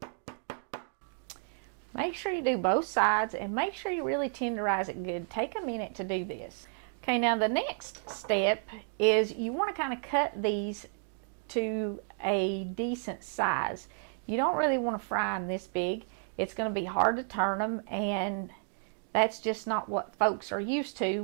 Make sure you do both sides and make sure you really tenderize it good. Take a minute to do this. Okay, now the next step is you want to kind of cut these to a decent size. You don't really want to fry them this big. It's going to be hard to turn them, and that's just not what folks are used to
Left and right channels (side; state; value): left; silent; 57 dB below the other